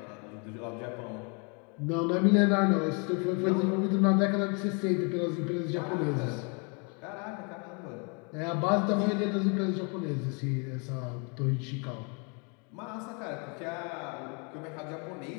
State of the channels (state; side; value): quieter; right; 34.9 dB